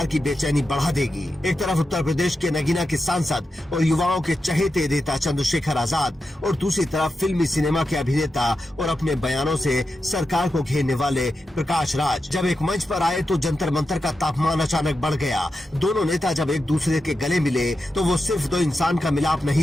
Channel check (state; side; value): normal; both; correlation 0.89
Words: की बेचैनी बढ़ा देगी। एक तरफ उत्तर प्रदेश के नगीना के सांसद और युवाओं के चहेते नेता चंद्रशेखर आजाद और दूसरी तरफ फिल्मी सिनेमा के अभिनेता और अपने बयानों से सरकार को घेरने वाले प्रकाश राज। जब एक मंच पर आए तो जंतर मंतर का तापमान अचानक बढ़ गया। दोनों नेता जब एक दूसरे के गले मिले तो वो सिर्फ दो इंसान का मिलाप